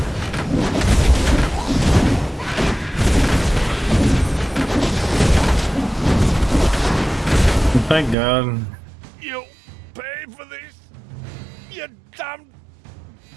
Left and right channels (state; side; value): drops out; left; at 8.2 s